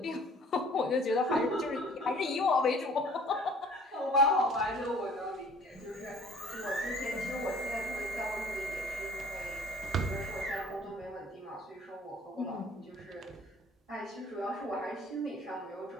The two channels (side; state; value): both; normal; correlation 0.52